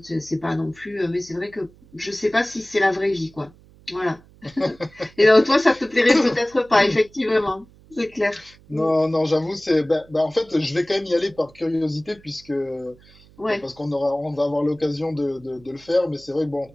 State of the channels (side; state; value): right; noise; hum, 26 dB below the sound